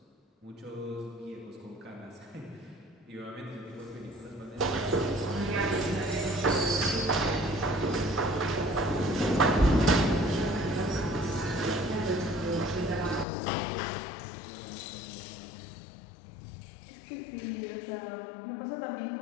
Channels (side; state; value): right; drops out; at 13.2 s